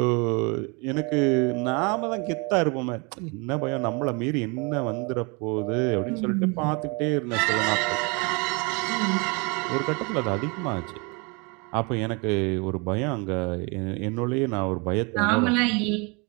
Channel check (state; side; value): quieter; left; 30.5 dB